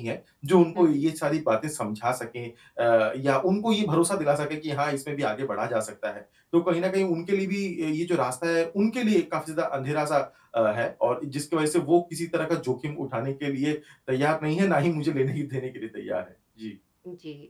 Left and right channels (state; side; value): identical; both; correlation 1.00